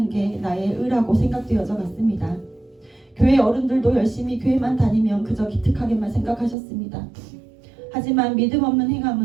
게 나의 의라고 생각되어져 갔습니다. 교회 어른들도 열심히 교회만 다니면 그저 기특하게만 생각하셨습니다. 하지만 믿음 없는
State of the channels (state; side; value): drops out; left; at 6.6 s